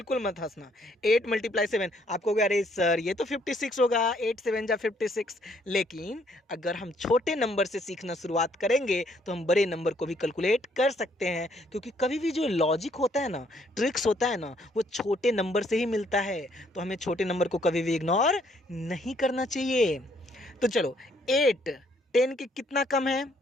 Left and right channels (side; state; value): both; normal; correlation 0.67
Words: मत हंसना। 8 × 7 आप कहोगे अरे सर ये तो 56 होगा, 8 7 जा 56। लेकिन अगर हम छोटे नंबर से सीखना शुरुआत करेंगे तो हम बड़े नंबर को भी कैलकुलेट कर सकते हैं, क्योंकि कभी भी जो लॉजिक होता है ना, ट्रिक्स होता है ना, वो छोटे नंबर से ही मिलता है। तो हमें छोटे नंबर को कभी भी इग्नोर नहीं करना चाहिए। तो चलो 8 10 के कितना कम है,